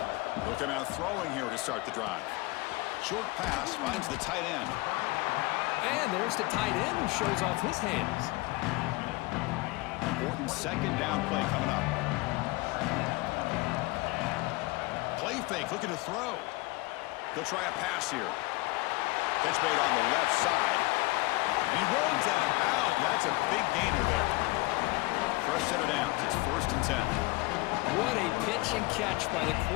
Looking out throwing here to start the drive. Short pass finds the tight end. And there's the tight end who shows off his hands. Important 2nd down play coming up. Play fake, looking to throw. He'll try a pass here. Catch made on the left side. And he runs out of bounds. That's a big gainer there. Fresh set of downs. It's 1st and 10. What a pitch and catch by the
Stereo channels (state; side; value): quieter; right; 23.2 dB